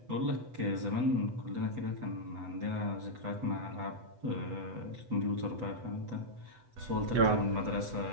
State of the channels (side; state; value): left; late; 8.0 ms